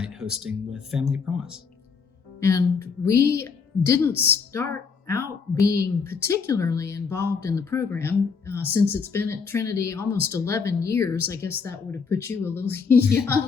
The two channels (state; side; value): quieter; right; 5.5 dB